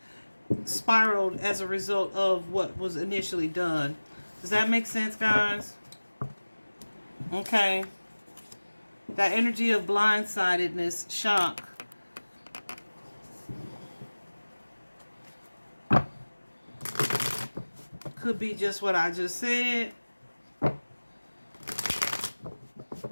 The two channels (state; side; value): inverted; both; correlation -1.00